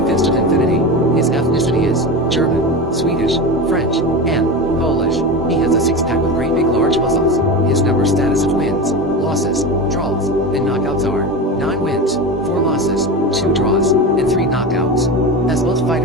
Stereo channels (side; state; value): both; normal; correlation 0.23